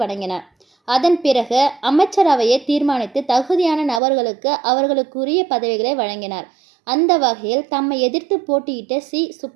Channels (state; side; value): drops out; left; at 4.0 s